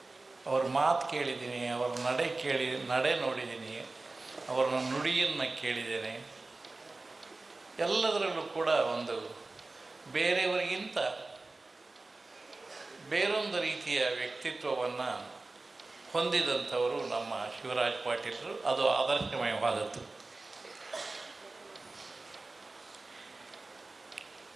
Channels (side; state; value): left; quieter; 3.3 dB